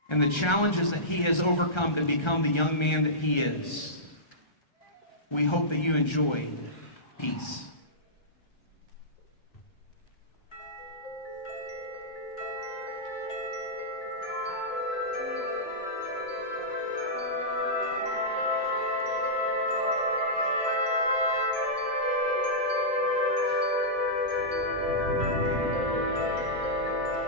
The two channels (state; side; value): late; right; 1.3 ms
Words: and the challenges that he has overcome to become the young man that he is. We hope that you enjoy peace.